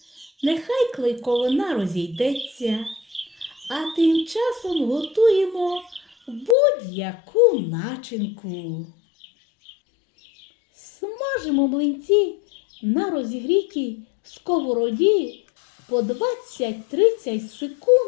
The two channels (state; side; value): drops out; right; at 6.6 s